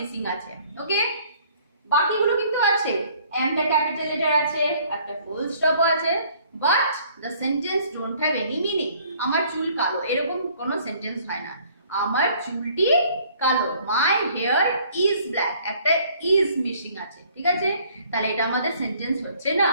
আছে। ওকে, বাকিগুলো কিন্তু আছে, এমটা ক্যাপিটাল লেটার আছে, একটা ফুল স্টপ আছে, but the sentence don't have any meaning. আমার চুল কালো, এরকম কোনো সেন্টেন্স হয় না। আমার চুলটি কালো, মাই হেয়ার ইজ ব্ল্যাক, একটা ইজ মিসিং আছে। ঠিক আছে, তাহলে এটা আমাদের সেন্টেন্স হচ্ছে না।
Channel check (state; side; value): inverted; both; correlation -0.59